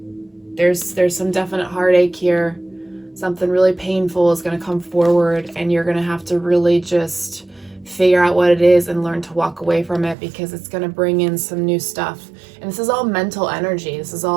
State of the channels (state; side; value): drops out; left; at 10.2 s